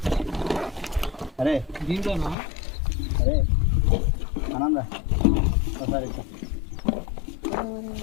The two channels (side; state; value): right; drops out; at 2.4 s